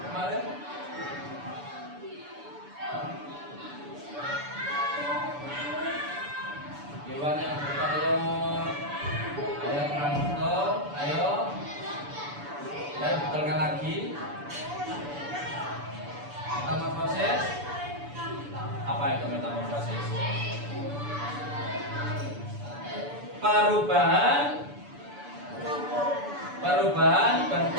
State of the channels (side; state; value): left; late; 6.9 ms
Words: Hewan yang bertelur. Ayo kurang betul. Ayo. Ya, betulkan lagi. Metamorfosis. Apa itu metamorfosis? Perubahan